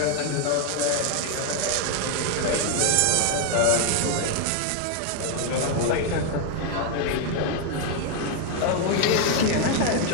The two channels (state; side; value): different; both; correlation 0.01